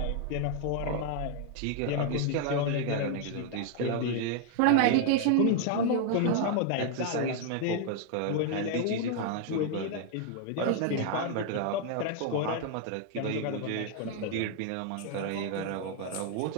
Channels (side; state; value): both; different; correlation 0.00